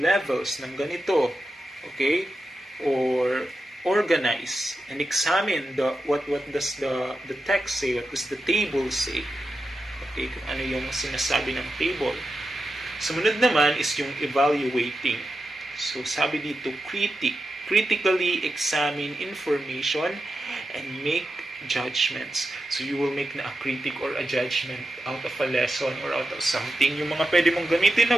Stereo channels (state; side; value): normal; both; correlation 0.90